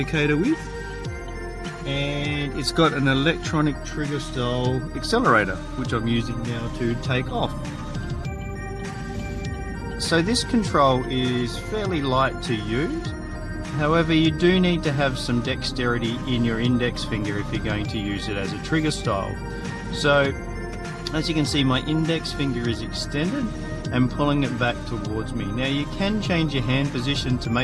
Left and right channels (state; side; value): identical; both; correlation 1.00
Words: with, and it's got an electronic trigger style accelerator, which I'm using now to take off. So this control is fairly light to use. However, you do need to have some dexterity in your index finger if you're going to use it as a trigger style. So as you can see, my index finger is extended and pulling it back towards me. Now you can change your hand position to